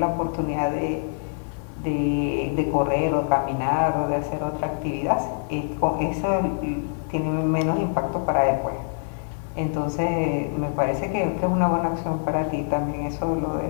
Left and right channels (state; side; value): silent; right; digital silence